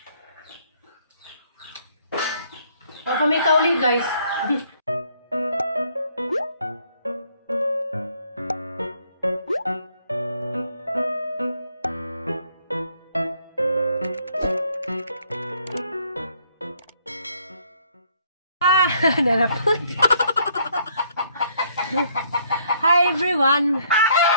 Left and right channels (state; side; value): inverted; both; correlation -0.66